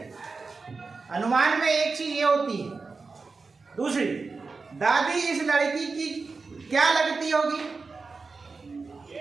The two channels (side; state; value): left; quieter; 4.3 dB